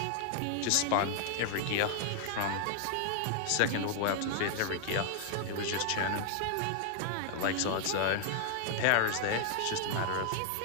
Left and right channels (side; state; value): both; different; correlation 0.00